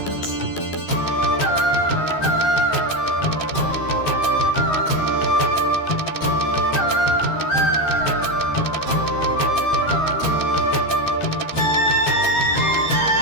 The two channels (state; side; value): late; right; 13 ms